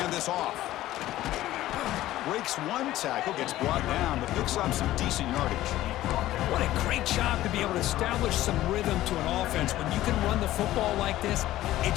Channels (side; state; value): right; quieter; 14.9 dB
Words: this off. Breaks one tackle, gets brought down, but picks up some decent yardage. What a great job to be able to establish some rhythm to an offense. When you can run the football like this, it